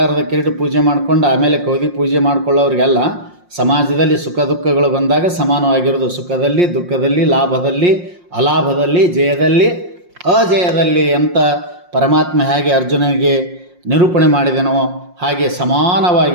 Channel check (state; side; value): late; left; 5.6 ms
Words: ಕಿರೀಟ ಪೂಜೆ ಮಾಡ್ಕೊಂಡು ಆಮೇಲೆ ಕೌದಿ ಪೂಜೆ ಮಾಡ್ಕೊಳ್ಳೋರಿಗೆಲ್ಲ ಸಮಾಜದಲ್ಲಿ ಸುಖ ದುಃಖಗಳು ಬಂದಾಗ ಸಮಾನವಾಗಿರೋದು. ಸುಖದಲ್ಲಿ ದುಃಖದಲ್ಲಿ ಲಾಭದಲ್ಲಿ ಅಲಾಭದಲ್ಲಿ ಜಯದಲ್ಲಿ ಅಜಯದಲ್ಲಿ ಅಂತ ಪರಮಾತ್ಮ ಹೇಗೆ ಅರ್ಜುನನಿಗೆ ನಿರೂಪಣೆ ಮಾಡಿದನೋ ಹಾಗೆ